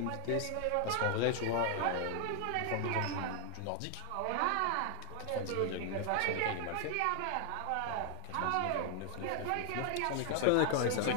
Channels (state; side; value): different; both; correlation 0.00